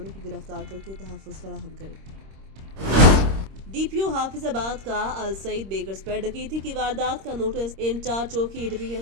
को गिरफ्तार करके तहफ़्फ़ुज़ फराहम करे। डीपीओ हाफिजाबाद का अल सईद बेकर्स पर डकैती की वारदात का नोटिस इंचार्ज चौकी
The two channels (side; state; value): left; late; 26 ms